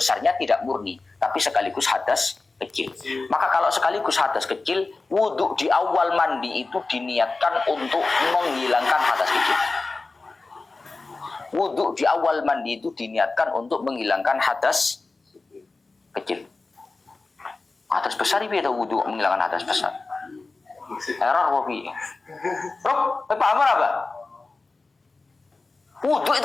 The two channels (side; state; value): right; quieter; 3.6 dB